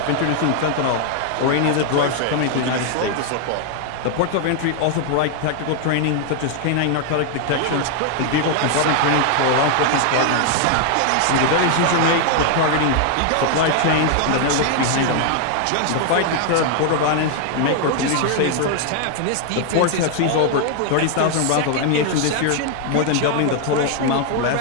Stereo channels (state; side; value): different; both; correlation 0.00